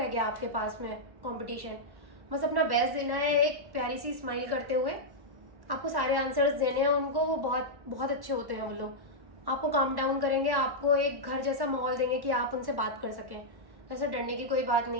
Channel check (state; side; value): late; left; 1.1 ms